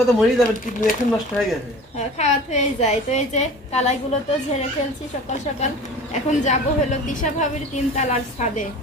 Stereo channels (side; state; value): both; normal; correlation 0.40